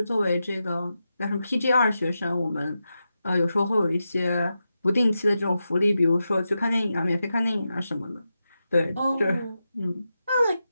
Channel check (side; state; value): both; inverted; correlation -0.89